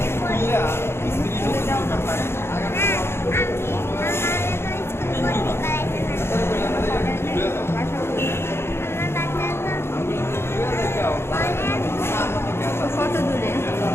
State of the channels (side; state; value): right; late; 0.12 ms